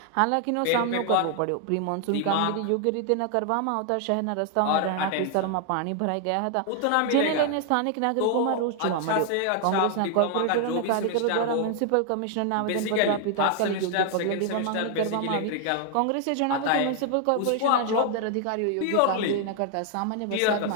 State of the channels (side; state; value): both; different; correlation 0.00